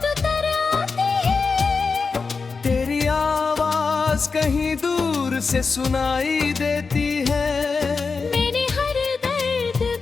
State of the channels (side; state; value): right; quieter; 4.7 dB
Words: तर आती है, तेरी आवाज कहीं दूर से सुनाई देती है। मैंने हर दर्द